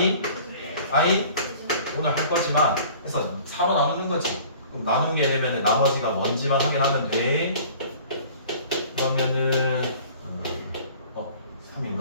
오늘 할 거지만 그래서 4로 나누는 거지. 그럼 나누게 되면 나머지가 뭔지만 확인하면 돼. 그러면은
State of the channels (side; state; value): both; inverted; correlation -0.48